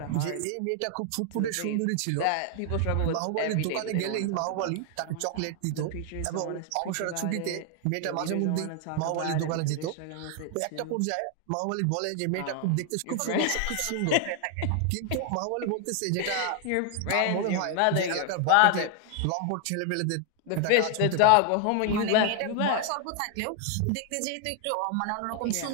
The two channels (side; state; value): both; different; correlation 0.00